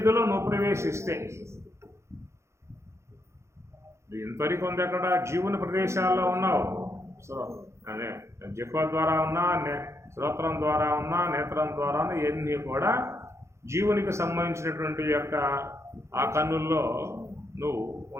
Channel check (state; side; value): late; left; 0.13 ms